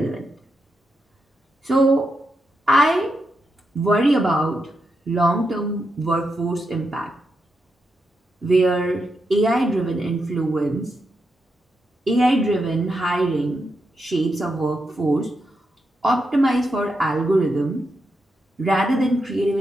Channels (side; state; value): both; normal; correlation 0.84